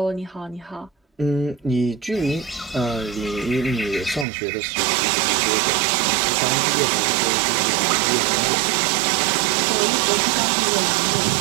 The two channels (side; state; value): left; drops out; at 4.2 s